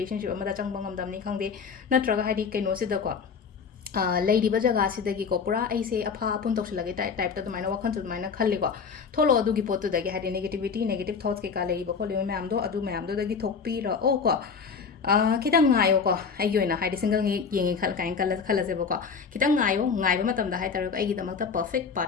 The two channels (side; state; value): right; quieter; 5.8 dB